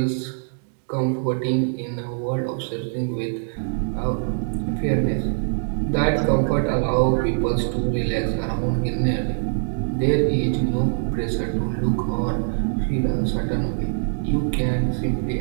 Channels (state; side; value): silent; left; digital silence